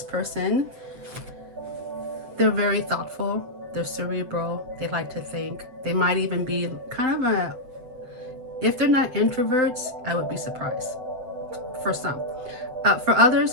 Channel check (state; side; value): late; left; 7.9 ms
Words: person, they're very thoughtful, they're cerebral, they like to think. They might even be kind of a, if they're not introverts, I would be surprised. For some. For others,